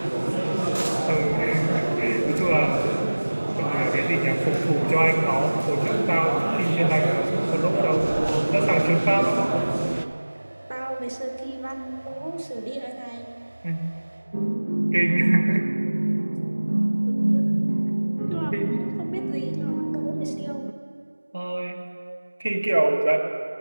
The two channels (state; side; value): inverted; both; correlation -1.00